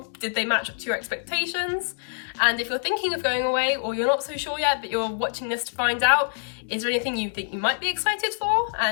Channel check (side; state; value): right; silent; digital silence